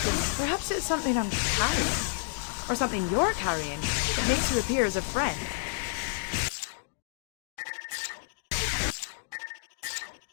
Perhaps it's something I'm carrying. Or something you're carrying that makes you appear as a friend.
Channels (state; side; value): silent; right; digital silence